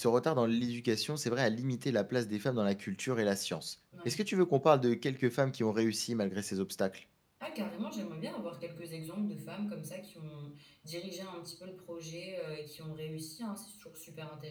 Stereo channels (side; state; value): both; identical; correlation 1.00